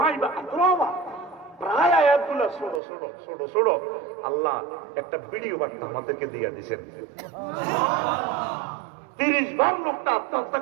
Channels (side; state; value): left; drops out; at 2.8 s